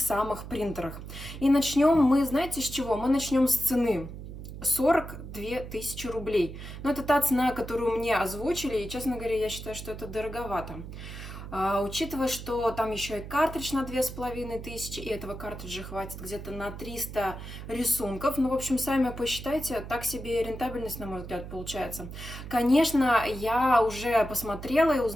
самых принтерах. И начнем мы, знаете, с чего? Мы начнем с цены. 42 тысячи рублей. Но это та цена, которую мне озвучили, и, честно говоря, я считаю, что это дороговато. Учитывая, что там еще и картридж на 2500, и этого картриджа хватит где-то на 300 рисунков. В общем, сами посчитайте, так себе рентабельность, на мой взгляд, получается. Конечно, я уже посмотрела и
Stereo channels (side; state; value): right; noise; hum, 11 dB below the sound